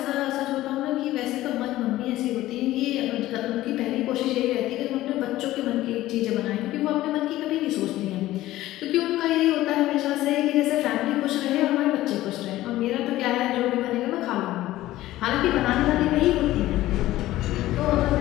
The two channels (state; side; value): quieter; right; 15.7 dB